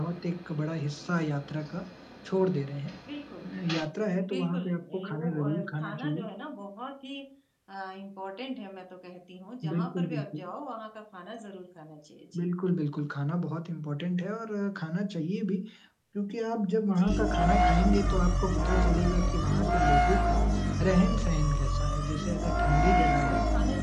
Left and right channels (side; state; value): both; identical; correlation 1.00